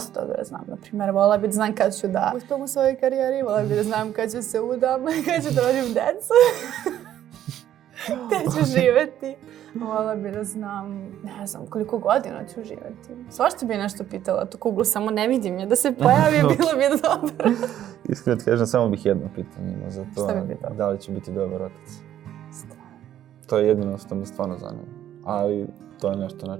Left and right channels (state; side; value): quieter; left; 11.5 dB